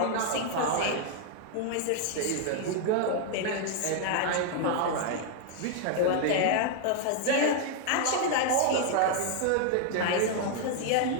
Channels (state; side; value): different; both; correlation 0.00